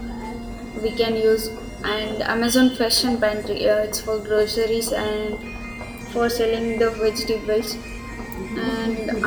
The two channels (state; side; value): identical; both; correlation 1.00